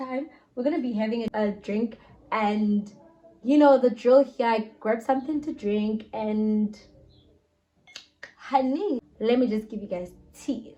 we're gonna be having a drink, and you know the drill here. I grab something to drink, and honey, let me just give you guys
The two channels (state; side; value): identical; both; correlation 1.00